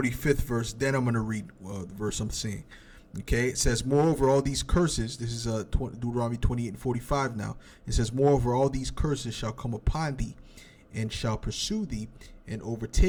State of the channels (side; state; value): both; identical; correlation 1.00